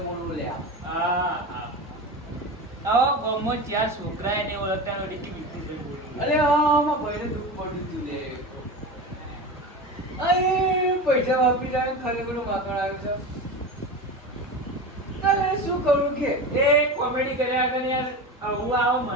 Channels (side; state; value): both; normal; correlation 0.26